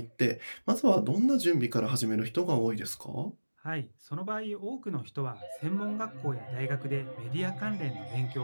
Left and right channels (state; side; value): inverted; both; correlation -1.00